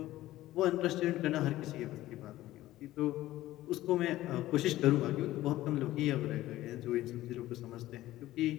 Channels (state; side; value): quieter; right; 15.6 dB